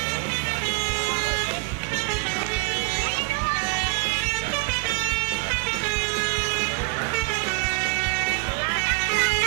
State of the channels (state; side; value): quieter; left; 35.4 dB